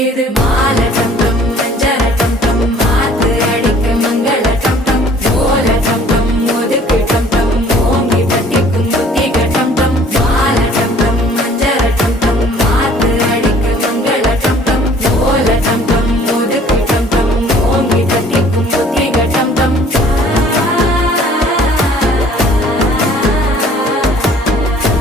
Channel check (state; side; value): normal; both; correlation 0.54